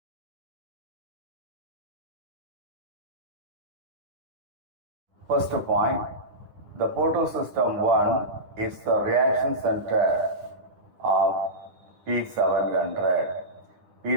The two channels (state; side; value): late; left; 9.9 ms